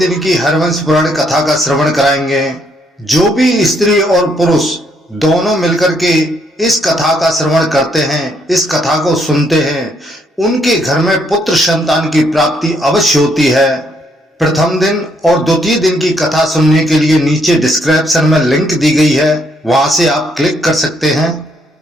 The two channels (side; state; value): both; normal; correlation 0.72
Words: की हरवंश पुराण कथा का श्रवण कराएंगे। जो भी स्त्री और पुरुष दोनों मिलकर के इस कथा का श्रवण करते हैं, इस कथा को सुनते हैं, उनके घर में पुत्र संतान की प्राप्ति अवश्य होती है। प्रथम दिन और द्वितीय दिन की कथा सुनने के लिए नीचे डिस्क्रिप्शन में लिंक दी गई है, वहां से आप क्लिक कर सकते हैं।